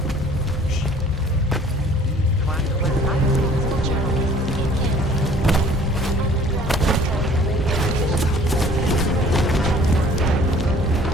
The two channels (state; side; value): normal; both; correlation 0.53